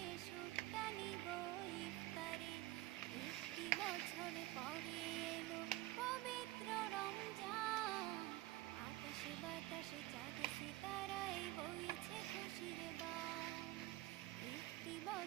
সুখটা নিব ইফতারে। একটি বছর পরে এলো পবিত্র রমজান, আকাশে বাতাসে চাঁদ সিতারায় বইছে খুশির বান। একটি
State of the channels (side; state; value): left; quieter; 18.0 dB